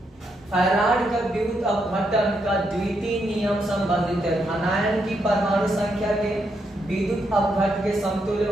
फैराड का विद्युत अपघटन का द्वितीय नियम संबंधित है। धनायन की परमाणु संख्या के विद्युत अपघट के समतुल्य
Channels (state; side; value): normal; both; correlation 0.79